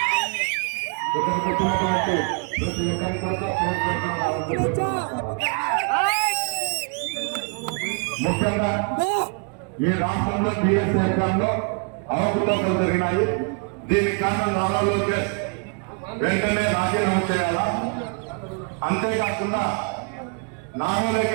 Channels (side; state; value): left; quieter; 38.0 dB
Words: ముఖ్యంగా ఈ రాష్ట్రంలో టీఎస్ అధికారంలో అవకతవకలు జరిగినాయి. దీనికి కారణం నారా లోకేష్ వెంటనే రాజీనామా చేయాలా. అంతేకాకుండా నారా